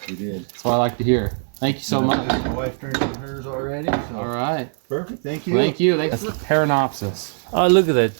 We did. That's what I like to hear. Thank you so much. My wife turned in hers already. So All right. perfect. Thank you. Thank you. That's the Paranopsis. Oh, look at that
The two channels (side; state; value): left; silent; 56 dB below the other